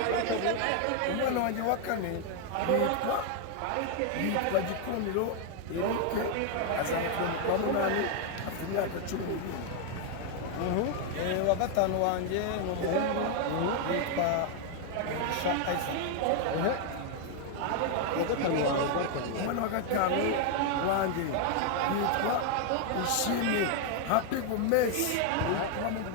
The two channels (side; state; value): both; different; correlation 0.00